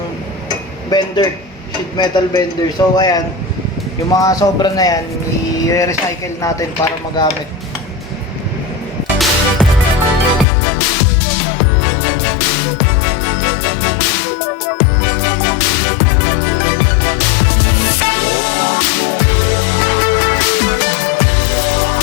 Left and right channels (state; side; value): drops out; right; at 10.5 s